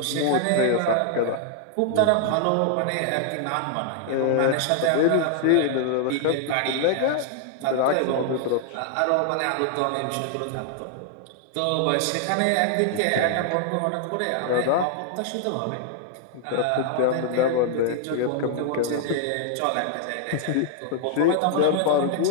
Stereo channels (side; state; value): both; different; correlation 0.00